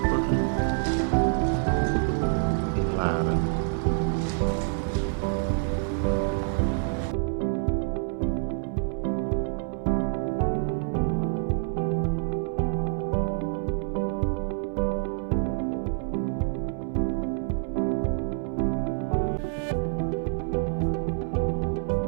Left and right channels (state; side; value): silent; left; 59 dB below the other